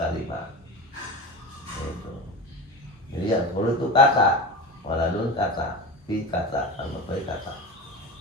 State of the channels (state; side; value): normal; both; correlation 0.27